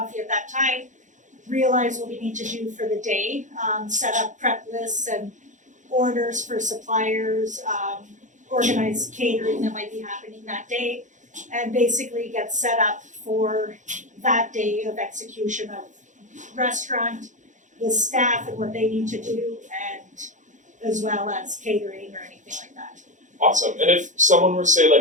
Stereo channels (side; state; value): left; late; 0.36 ms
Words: at that time, realize what we need to do for the day, set up prep lists and orders for suppliers, organize catering that might be happening that day, and basically get set up for that day of execution of restaurant, the staff and what they need to do, and as well as catering or anything like that. Awesome. And if someone were, say,